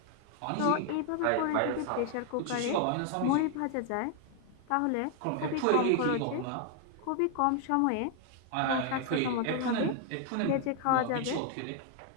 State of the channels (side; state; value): both; different; correlation 0.00